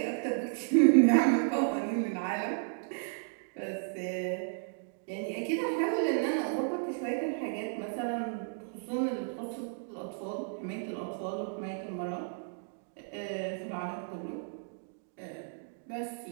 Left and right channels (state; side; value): silent; left; digital silence